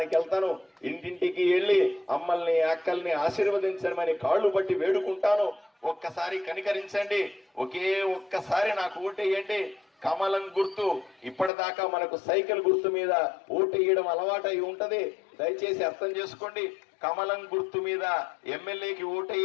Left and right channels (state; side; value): drops out; right; at 11.5 s